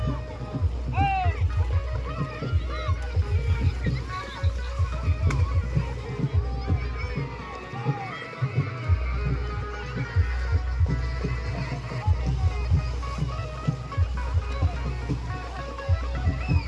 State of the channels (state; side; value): identical; both; correlation 1.00